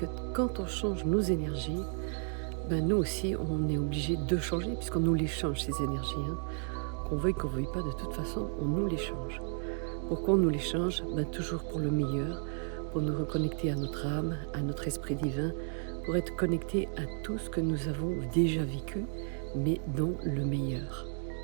quand on change nos énergies, nous aussi, on est obligé de changer puisqu'on nous les change, ces énergies. Qu'on veuille pas, de toute façon, on nous les change. Pourquoi on nous les change? Toujours pour le meilleur, pour nous reconnecter à notre âme, à notre esprit divin, pour être connecté à tout ce que nous avons déjà vécu, mais dans le meilleur.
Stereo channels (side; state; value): left; silent; 56 dB below the other